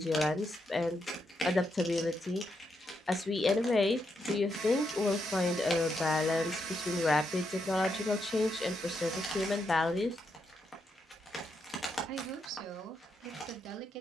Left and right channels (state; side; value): normal; both; correlation 0.81